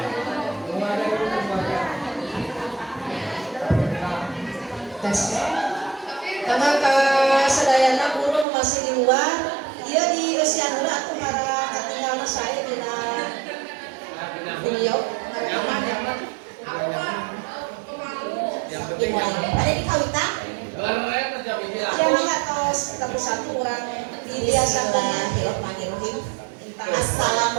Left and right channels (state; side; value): drops out; left; at 8.5 s